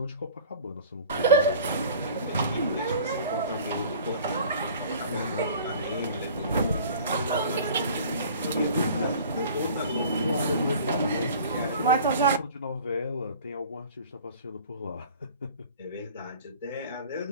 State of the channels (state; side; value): inverted; both; correlation -0.46